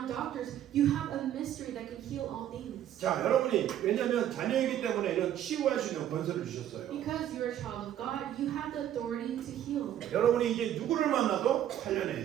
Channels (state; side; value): quieter; left; 11.2 dB